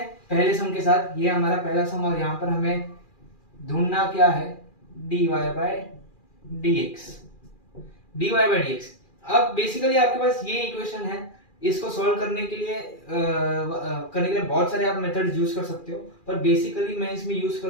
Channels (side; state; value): right; late; 2.4 ms